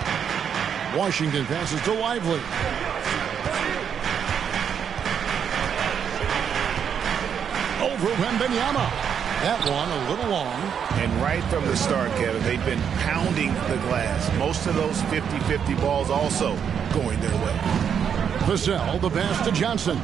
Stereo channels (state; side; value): quieter; left; 7.8 dB